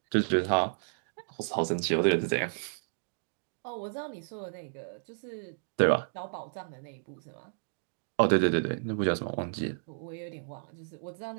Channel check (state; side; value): silent; left; digital silence